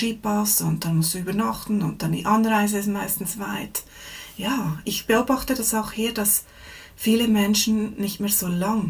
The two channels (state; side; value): identical; both; correlation 1.00